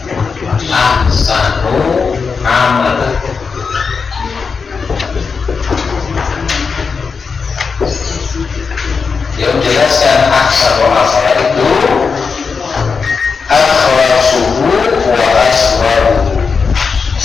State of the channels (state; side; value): quieter; right; 5.3 dB